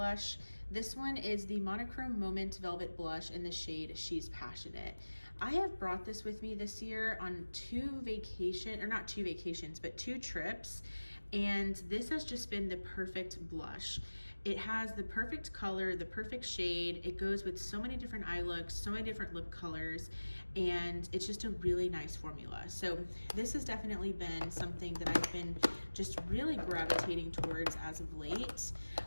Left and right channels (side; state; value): both; inverted; correlation -1.00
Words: This one is the Monochrome Moment Velvet Blush in the shade She's Passionate. I have brought this with me this year on two trips, and this has just been the perfect blush. It has the perfect color, the perfect shade. It goes with so many different eye looks, so many different lip colors, and it's just a really nice formula. So this has definitely been something that I've been just really gravitating towards as of late.